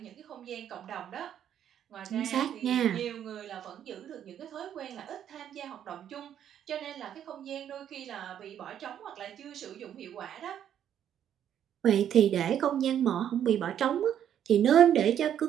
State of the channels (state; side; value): quieter; left; 9.8 dB